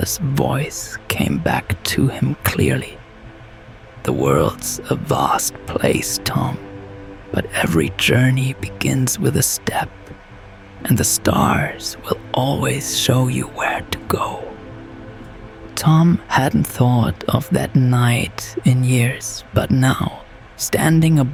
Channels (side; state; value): both; identical; correlation 1.00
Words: voice came back to him clearly. The world's a vast place, Tom, but every journey begins with a step, and the stars will always show you where to go. Tom hadn't thought of that night in years, but now, standing